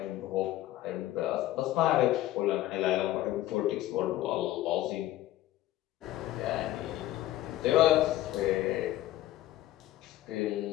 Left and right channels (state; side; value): quieter; right; 14.9 dB